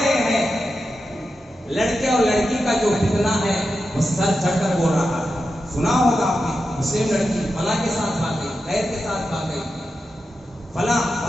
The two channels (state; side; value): normal; both; correlation 0.89